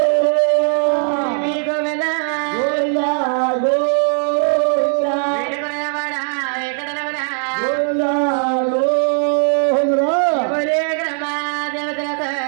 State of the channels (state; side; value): silent; left; 61 dB below the other